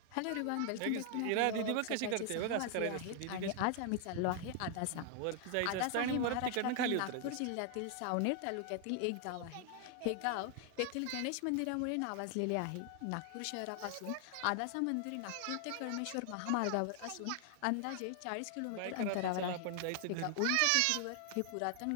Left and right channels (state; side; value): different; both; correlation 0.00